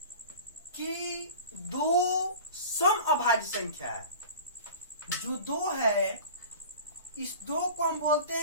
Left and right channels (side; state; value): both; inverted; correlation -0.38